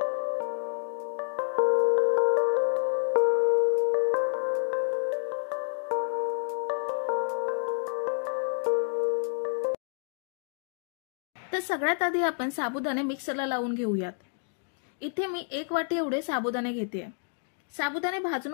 तर सगळ्यात आधी आपण साबुदाणे मिक्सरला लावून घेऊयात। इथे मी 1 वाटी एवढे साबुदाणे घेते। साबुदाणे भाजून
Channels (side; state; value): right; silent; digital silence